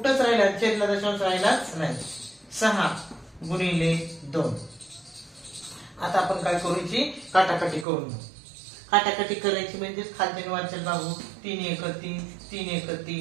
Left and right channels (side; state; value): left; drops out; at 7.9 s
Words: राहिला, छेदला दशांश राहिलाच नाही. 6 गुणिले 2. आता आपण काय करू, काटाकाटी करून घेऊ. काटाकाटी करायची म्हणजे खालच्या वरच्या बाजू 3 1 3 3 1